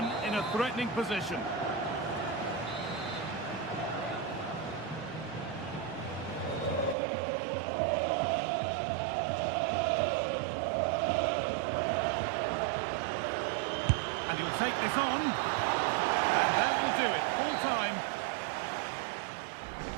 in a threatening position. And he'll take this on. And that will do it. Full time.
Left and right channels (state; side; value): drops out; left; at 7.0 s